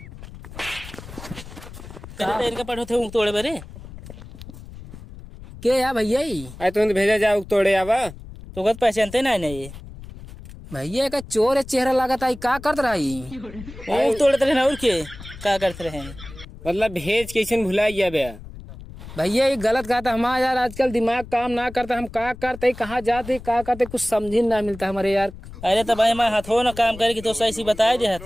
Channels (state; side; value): noise; left; rumble, 15 dB below the sound